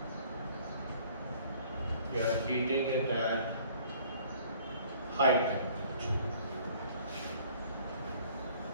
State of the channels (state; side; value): inverted; both; correlation -0.55